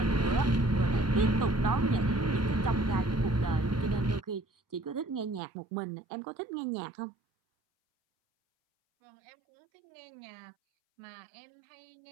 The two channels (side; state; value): left; drops out; at 5.4 s